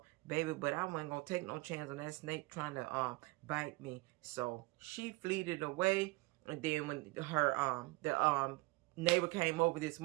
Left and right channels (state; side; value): quieter; left; 23.7 dB